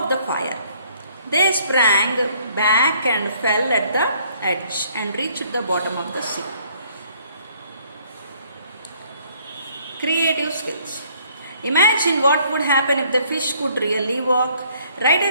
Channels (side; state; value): both; inverted; correlation -0.62